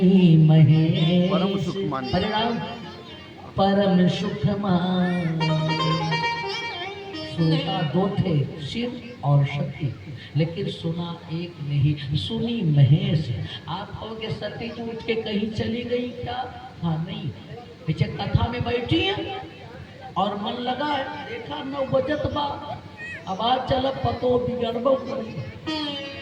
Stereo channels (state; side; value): identical; both; correlation 1.00